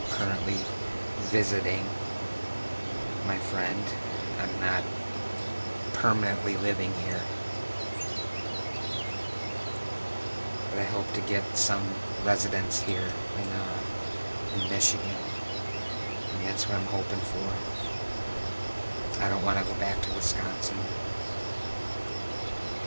currently visiting my friend. I'm not permanently living here. But I hope to get some residence here in Michigan. And that's what I'm hoping for. I don't want to go back to Wisconsin.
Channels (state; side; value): inverted; both; correlation -1.00